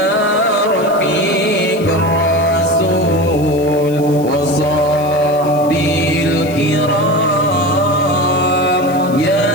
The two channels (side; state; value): left; noise; hiss, 20 dB below the sound